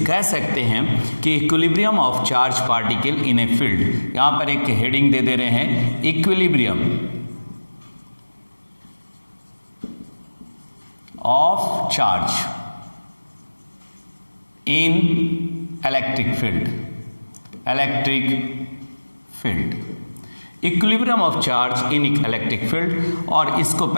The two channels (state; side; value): inverted; both; correlation -1.00